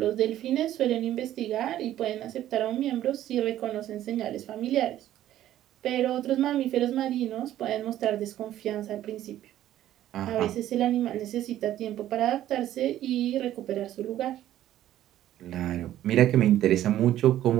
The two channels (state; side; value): quieter; left; 12.8 dB